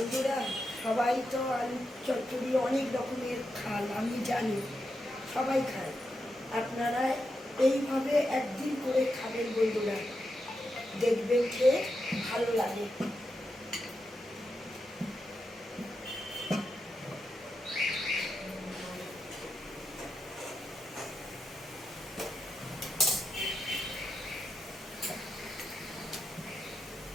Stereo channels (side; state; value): both; normal; correlation 0.87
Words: সবাই তো আলু চচ্চড়ি অনেক রকমের খান, আমি জানি সবাই খায়। আপনারা এইভাবে একদিন করে খাবেন বন্ধুরা, দেখবেন খেয়ে ভালো লাগে।